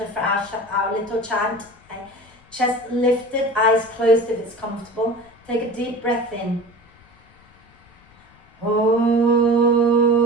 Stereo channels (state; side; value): noise; left; rumble, 29 dB below the sound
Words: for our little chant. Okay. Chest lifted, eyes closed if it's comfortable. Take a deep breath in.